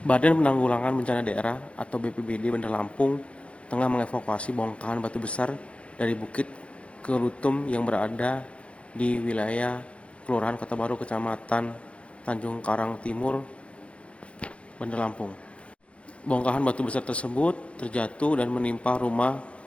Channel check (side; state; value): right; late; 0.061 ms